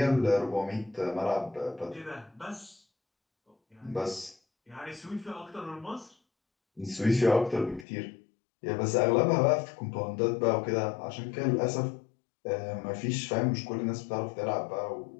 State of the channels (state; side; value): drops out; right; at 7.9 s